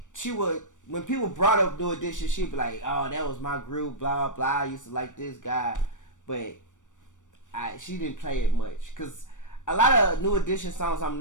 she would. When people brought up New Edition, she'd be like, "Oh, that was my group, blah blah. I used to like this guy," but she didn't play it much because a lot of New Edition songs I'm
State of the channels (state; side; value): late; right; 0.86 ms